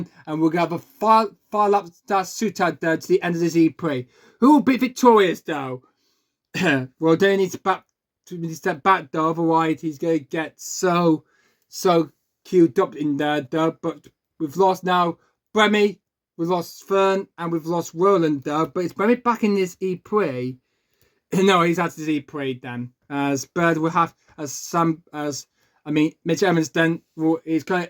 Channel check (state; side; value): identical; both; correlation 1.00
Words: And we're going to have a 5 laps that suit out, though, to the end of this E-Prix. Who will be victorious, though? Well, they need to step back, though, otherwise he's going to get so queued up in there, though. But we've lost now Bremy, we've lost Fern, and we've lost Roland, though. But it's Bremy back in this E-Prix. No, he's out of this E-Prix, then. As Bird will have, Mitch Evans, then, is going